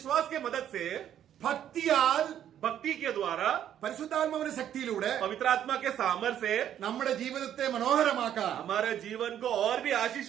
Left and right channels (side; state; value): left; quieter; 10.4 dB